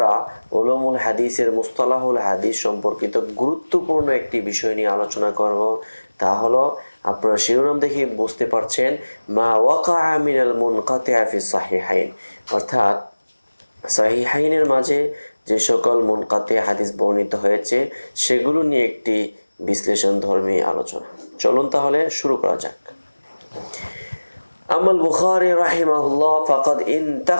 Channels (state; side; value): inverted; both; correlation -1.00